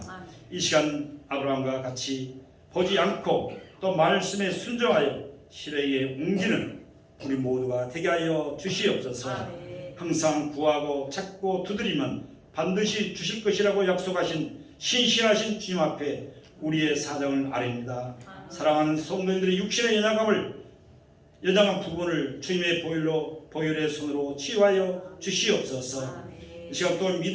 이 시간 아브라함과 같이 보지 않고 또 말씀에 순종하여 실행에 옮기는 우리 모두가 되게 하여 주시옵소서. 항상 구하고 찾고 두드리면 반드시 주실 것이라고 약속하신 신실하신 주님 앞에 우리의 사정을 아뢰입니다. 사랑하는 성도님들의 육신의 연약한 부분을 주님의 보혈의 손으로 치유하여 주시옵소서. 이 시간 또한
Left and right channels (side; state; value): both; identical; correlation 1.00